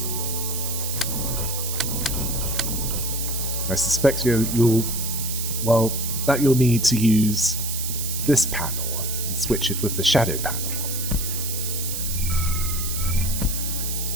I suspect you'll Well, that you'll need to use this panel and switch it with the shadow panel.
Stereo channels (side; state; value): right; noise; hiss, 4 dB below the sound